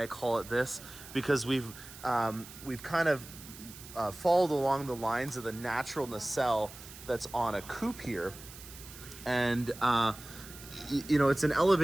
I call it this, because we've kind of followed along the lines of the natural nacelle that's on a coupe here. And it's an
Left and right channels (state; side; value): noise; right; hiss, 16 dB below the sound